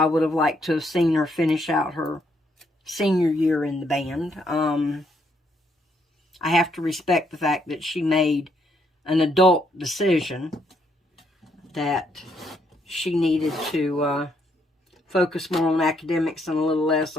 would have liked to have seen her finish out her senior year in the band, I have to respect the fact that she made an adult decision that she needed to focus more on academics and a little less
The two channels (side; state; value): both; normal; correlation 0.73